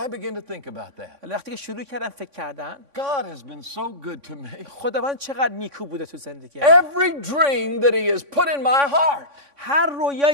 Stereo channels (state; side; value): late; left; 3.6 ms